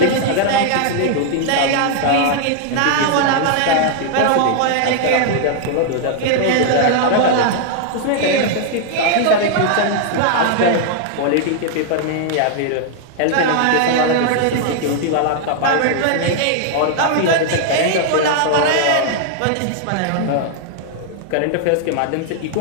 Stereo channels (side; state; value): both; different; correlation 0.00